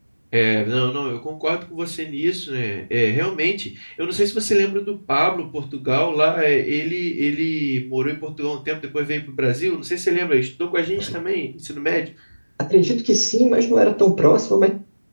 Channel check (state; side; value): inverted; both; correlation -1.00